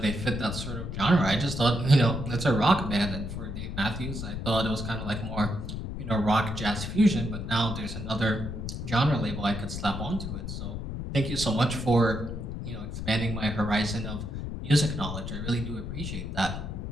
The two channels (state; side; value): noise; left; rumble, 6 dB below the sound